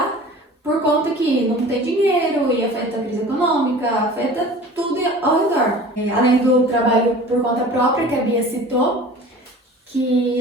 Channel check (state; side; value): normal; both; correlation 0.42